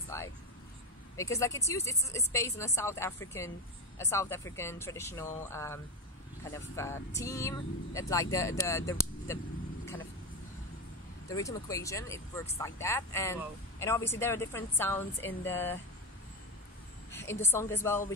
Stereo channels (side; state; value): both; normal; correlation 0.14